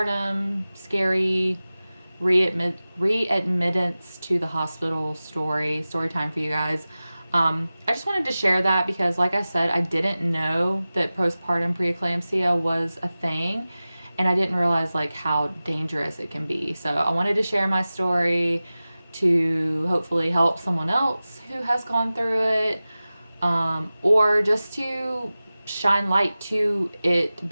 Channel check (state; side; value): inverted; both; correlation -0.96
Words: scary readmittance to the hospital story time for you guys. I just wanted to share that because like I said, I didn't know that postpartum preeclampsia was a thing, and I didn't realize like how dangerous it can be. So I wanted to share my story to hopefully help someone else who has gone through it, or just to shine light to it